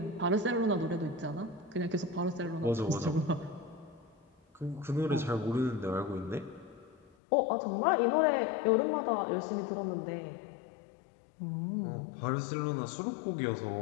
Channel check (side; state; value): right; drops out; at 7.1 s